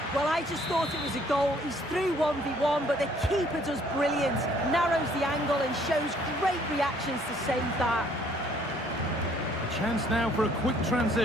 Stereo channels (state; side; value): normal; both; correlation 0.61